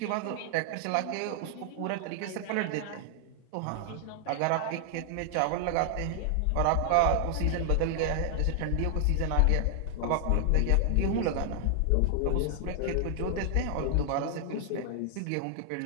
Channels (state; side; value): different; both; correlation 0.00